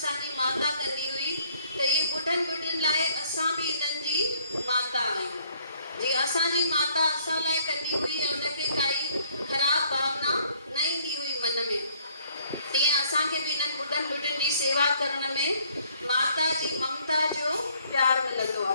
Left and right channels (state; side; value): inverted; both; correlation -0.63